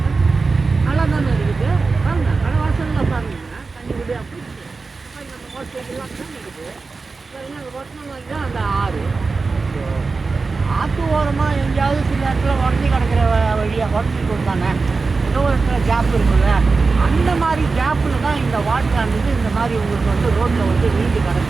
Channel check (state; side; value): quieter; left; 4.2 dB